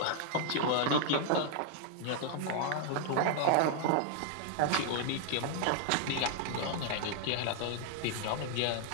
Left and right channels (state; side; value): different; both; correlation 0.00